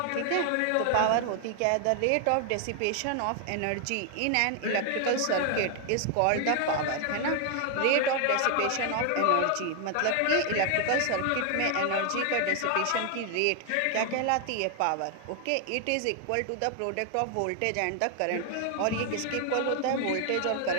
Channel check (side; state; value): both; different; correlation 0.00